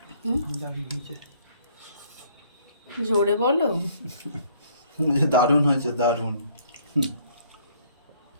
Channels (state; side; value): inverted; both; correlation -0.62